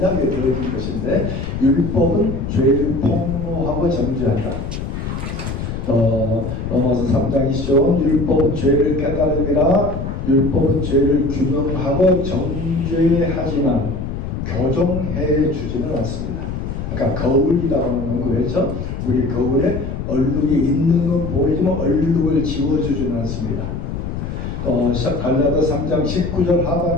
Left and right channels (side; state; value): left; noise; rumble, 5 dB below the sound